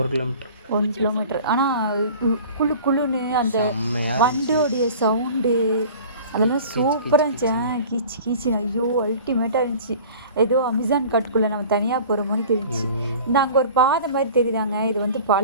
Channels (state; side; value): inverted; both; correlation -0.43